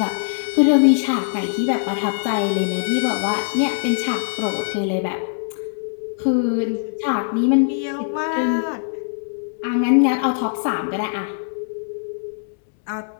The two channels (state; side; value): silent; right; 65 dB below the other